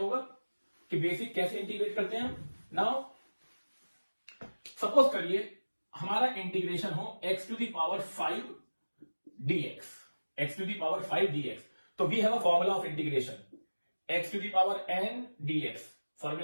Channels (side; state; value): both; inverted; correlation -1.00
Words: कि बेसिक कैसे इंटीग्रेट करते हैं. नाउ सपोज करिए हमारा इंटीग्रेशन हो x to the power 5 dx. x to the power 5 dx. तो we have a formula of integration x to the power n dx.